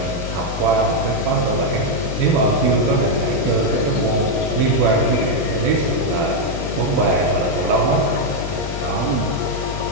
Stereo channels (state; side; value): noise; left; hum, 7 dB below the sound